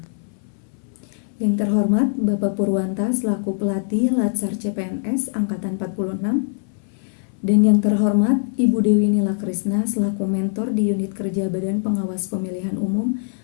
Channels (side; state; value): right; silent; 59 dB below the other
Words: Yang terhormat Bapak Purwanta selaku pelatih Latsar CPNS Angkatan 46, dan yang terhormat Ibu Dewi Nila Krisna selaku mentor di unit kerja Badan Pengawas Pemilihan Umum